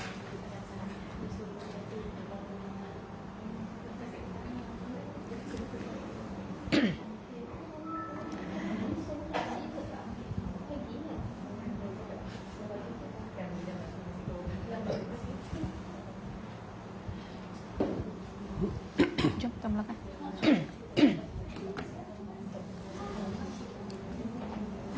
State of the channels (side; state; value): both; identical; correlation 1.00